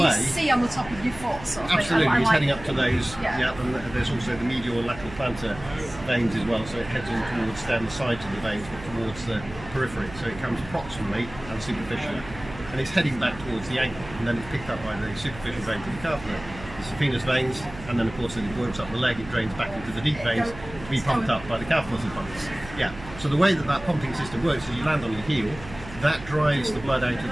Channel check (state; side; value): noise; right; hum, 14 dB below the sound